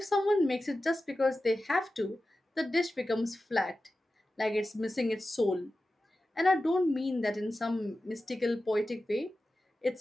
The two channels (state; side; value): normal; both; correlation 0.94